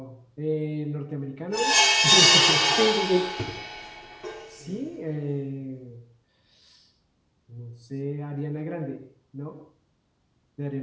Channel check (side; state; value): both; identical; correlation 1.00